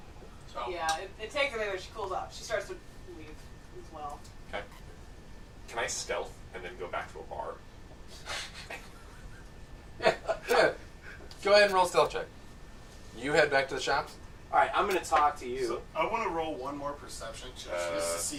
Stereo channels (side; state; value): both; identical; correlation 1.00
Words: Yeah, it takes a minute when she cools off. She starts to leave as well. Can I stealth and then go back to a bar? Go ahead and roll stealth check. You head back to the shops. All right, I'm gonna talk to you. So I want to roll one more perception check just to see